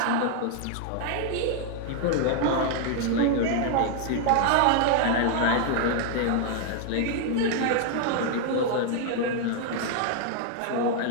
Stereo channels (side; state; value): both; different; correlation 0.00